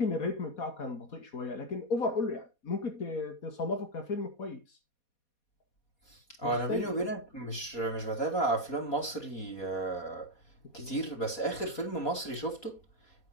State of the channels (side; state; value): right; late; 4.2 ms